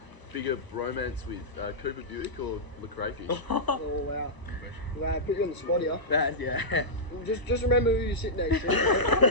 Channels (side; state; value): right; late; 1.0 ms